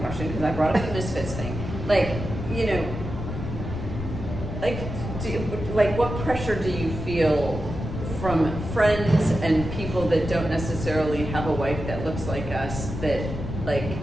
because I brought up the Misfits thing. Like, you know, like what pressure do you feel from friends and people that don't necessarily have a wife that looks like us, that like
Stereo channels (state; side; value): noise; left; rumble, 6 dB below the sound